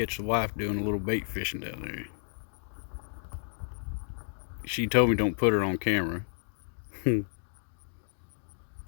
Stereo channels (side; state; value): right; silent; digital silence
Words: the wife doing a little bait fishing down there. She told me don't put her on camera. I